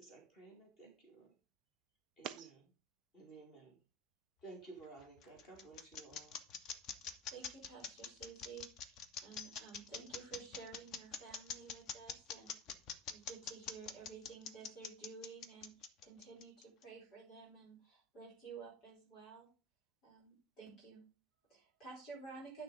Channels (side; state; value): both; normal; correlation 0.31